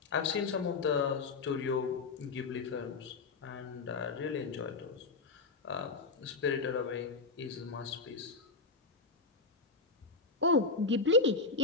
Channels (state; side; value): quieter; right; 4.0 dB